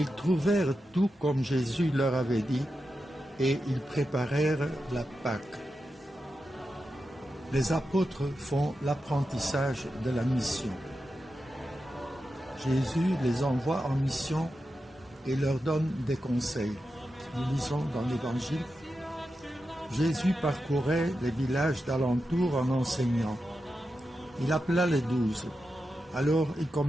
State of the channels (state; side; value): normal; both; correlation 0.89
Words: trouvèrent tout comme Jésus leur avait dit, et ils préparèrent la Pâque. Les apôtres font l'apprentissage de la mission. Jésus les envoie en mission et leur donne des conseils. Nous lisons dans l'Évangile. Jésus parcourait les villages d'alentour en enseignant. Il appela les 12. Alors il